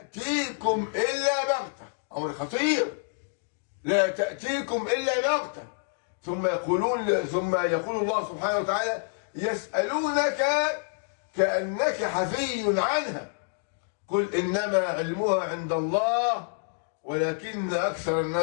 إلا بغتة. أمر خطير، لا تأتيكم إلا بغتة. ثم يقول الله سبحانه وتعالى: يسألونك كأنك حفي عنها قل إنما علمها عند الله ولكن أكثر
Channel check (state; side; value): silent; right; digital silence